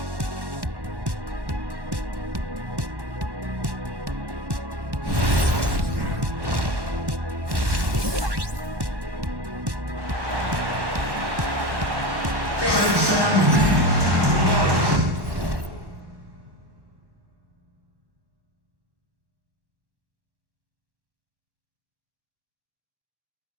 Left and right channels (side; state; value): left; late; 1.1 ms